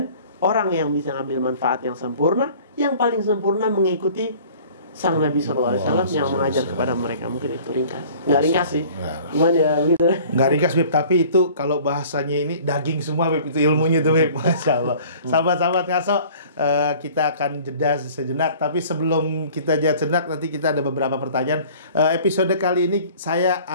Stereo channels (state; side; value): inverted; both; correlation -0.49